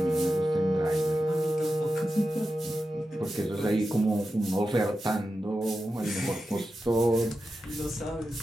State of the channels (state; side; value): normal; both; correlation 0.91